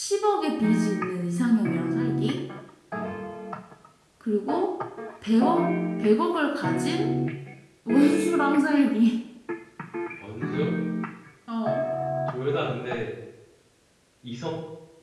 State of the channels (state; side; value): identical; both; correlation 1.00